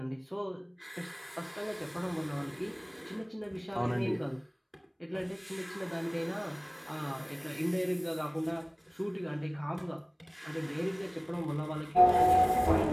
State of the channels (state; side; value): identical; both; correlation 1.00